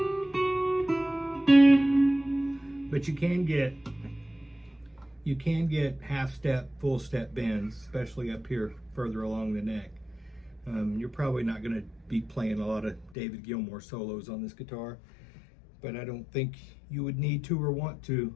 But you can get half step, full step bends, especially up here further along the neck. You're probably not going to be playing a lot of David Gilmour solos on this guitar, but I don't think you would need to or want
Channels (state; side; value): drops out; right; at 13.2 s